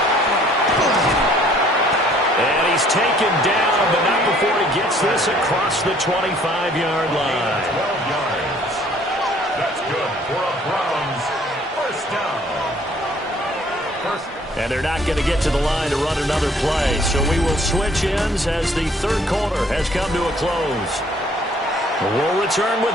And he's taken down, but not before he gets this across the 25-yard line. 12 yards. That's good for a Browns first down. And they're not going to get to the line to run another play. So we will switch ends as the 3rd quarter has come to a close. We'll return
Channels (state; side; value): normal; both; correlation 0.59